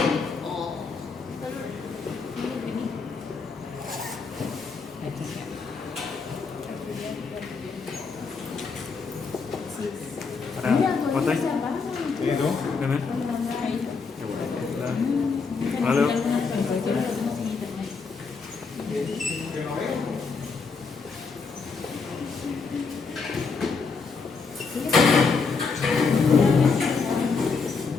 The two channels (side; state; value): right; quieter; 4.8 dB